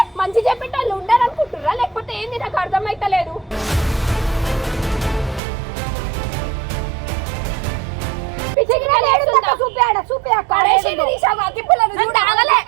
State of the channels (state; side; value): drops out; left; at 5.4 s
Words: మంచి చెప్పిన వాళ్ళు ఉండాలనుకుంటుర్రా లేకపోతే ఏంది? నాకు అర్థమైతలేదు.